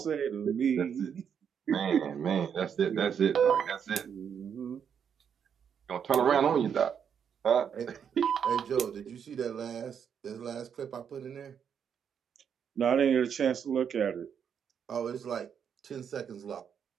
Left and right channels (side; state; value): left; quieter; 7.7 dB